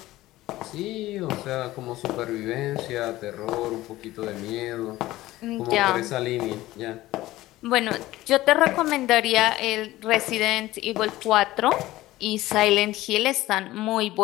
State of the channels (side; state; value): right; quieter; 16.8 dB